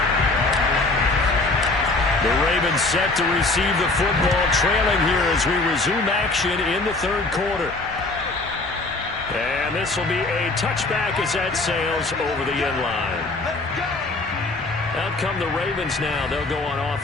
Set to receive the football, trailing here as we resume action in the third quarter. And this will be a touchback as that sails over the end line. Out come the Ravens now. They'll go on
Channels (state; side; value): quieter; right; 3.2 dB